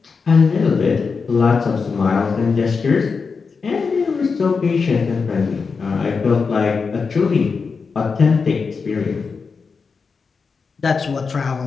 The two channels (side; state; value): right; quieter; 5.1 dB